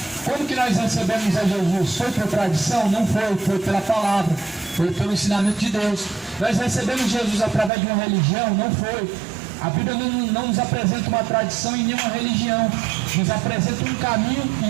Como que nós recebemos a Jesus? Foi por tradição? Não foi. Foi pela palavra. Foi pelo ensinamento de Deus. Nós recebemos Jesus através de uma religião? Não foi. A Bíblia não nos apresenta uma tradição em nenhuma religião. Nos apresenta um caminho, e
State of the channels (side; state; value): left; drops out; at 7.7 s